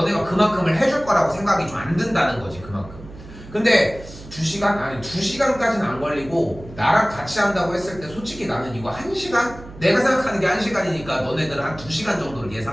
그만큼을 해줄 거라고 생각이 좀 안 든다는 거지 그만큼. 근데 2시간? 아니 2시간까지는 안 걸리고 나랑 같이 한다고 했을 때 솔직히 나는 이거 1시간? 내가 생각하는 게 1시간이니까 너네들은 한 2시간 정도를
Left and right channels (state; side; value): noise; right; hum, 16 dB below the sound